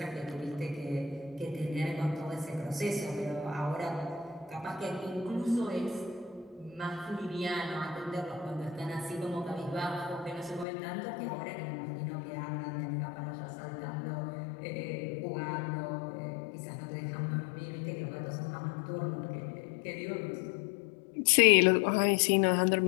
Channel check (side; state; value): right; drops out; at 10.7 s